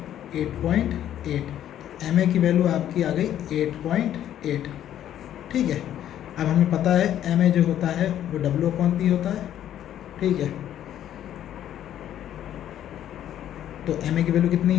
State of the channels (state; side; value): quieter; right; 11.2 dB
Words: 8.8, MA की वैल्यू आपकी आ गई 8.8। ठीक है, अब हमें पता है MA जो होता है वो W/P होता है। ठीक है, तो MA की वैल्यू कितनी